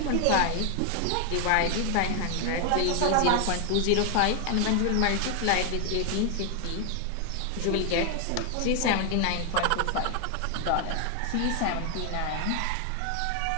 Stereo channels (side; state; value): both; different; correlation 0.00